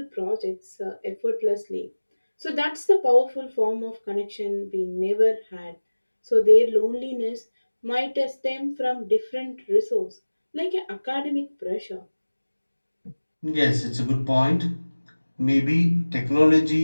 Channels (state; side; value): inverted; both; correlation -1.00